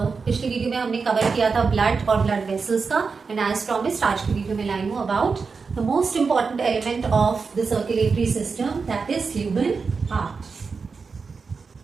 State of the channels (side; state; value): left; quieter; 4.9 dB